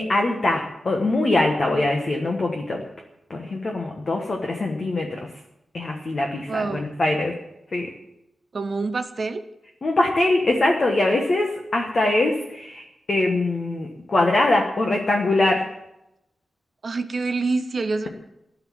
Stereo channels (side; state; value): both; normal; correlation 0.91